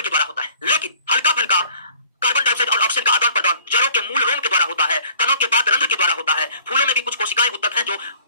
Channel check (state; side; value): inverted; both; correlation -0.53